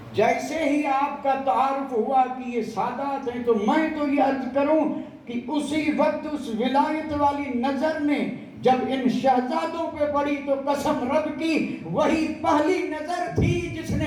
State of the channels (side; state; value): both; identical; correlation 1.00